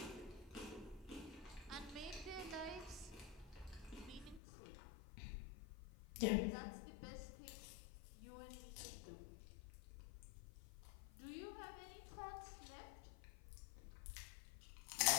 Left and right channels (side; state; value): right; drops out; at 4.4 s